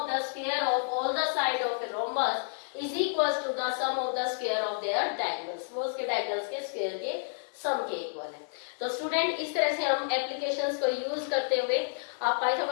the square of all the side of a rhombus is equal to the sum of the square of their diagonals. वो उसके diagonals के square के सम के इक्वल है। तो स्टूडेंट इस तरह से हम एप्लीकेशंस को यूज करते हुए,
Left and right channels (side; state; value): right; silent; digital silence